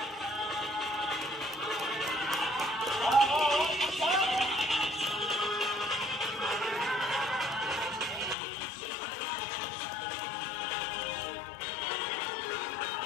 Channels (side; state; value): right; drops out; at 8.3 s